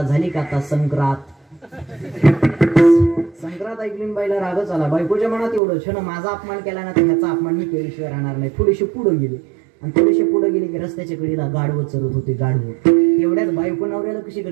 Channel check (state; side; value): drops out; left; at 5.6 s